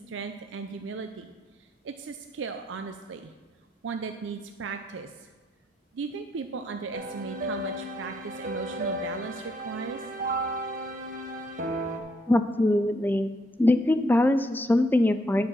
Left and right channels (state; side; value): normal; both; correlation 0.74